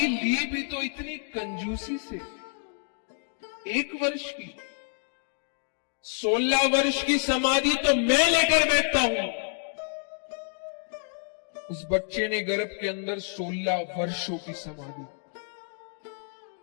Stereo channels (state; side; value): silent; right; 59 dB below the other